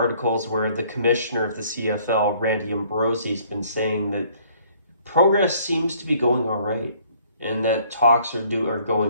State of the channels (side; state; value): both; inverted; correlation -0.61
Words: where the commissioner of the CFL, Randy Ambrosie, has been saying that progress seems to be going all right and that talks are